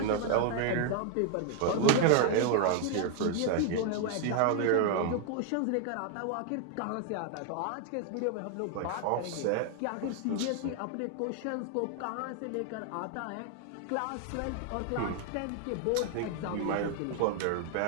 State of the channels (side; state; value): both; different; correlation 0.00